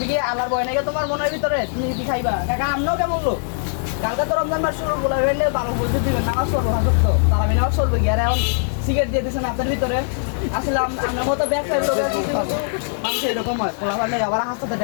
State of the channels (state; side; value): silent; right; digital silence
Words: কি আল্লাহর ভয় নাকি তোমার মনের ভিতরে? তুমি কি খাইবা? কাকা আমরাও কেমন লোক, কালকে তো রমজান মাস শুরু বলে হইলে ভালো বলতে দিবেন, নামাজ পড়বো হাসত তো তারা নামাজ পড়বো কি? আর এখন সিগারেট দিয়ে দিচ্ছেন আপনার ভিতরে। আসলে আপনার মতো ব্যবসায়ী লোক মানুষ এরকম হয়, খোলা পারলে আবার হাসতে